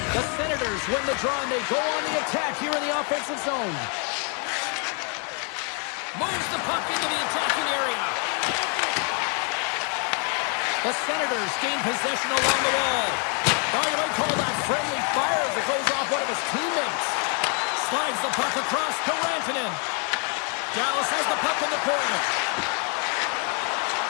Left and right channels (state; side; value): quieter; right; 38.4 dB